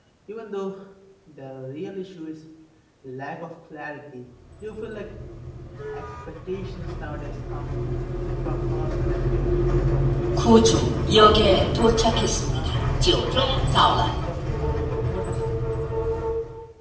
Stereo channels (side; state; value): both; identical; correlation 1.00